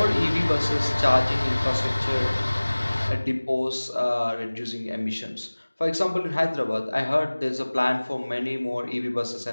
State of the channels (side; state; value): both; inverted; correlation -1.00